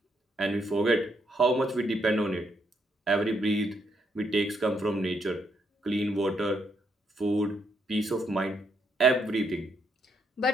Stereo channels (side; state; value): both; normal; correlation 0.75